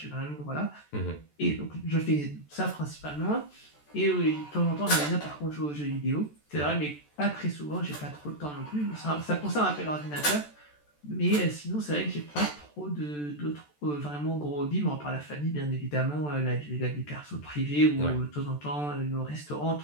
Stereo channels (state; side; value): late; right; 14 ms